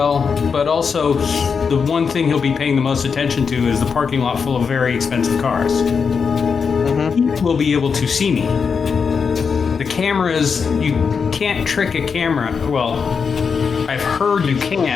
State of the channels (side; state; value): right; quieter; 5.8 dB